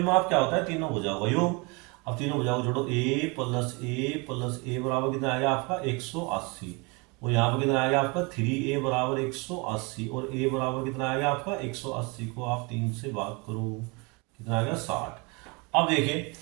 क्या होता है, तीनों भुजाओं का योग। अब तीनों भुजाओं को जोड़ो, a प्लस ए प्लस ए बराबर कितना आएगा आपका 180, और यहाँ पर कितना आएगा आपका 3a बराबर 180, और a बराबर कितना आएगा आपका 180 को आप 3 से भाग करो, कितना आएगा 60। अब देखिए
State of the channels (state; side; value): quieter; left; 28.9 dB